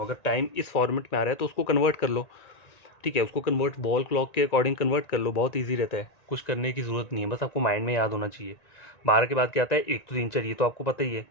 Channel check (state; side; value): late; right; 1.9 ms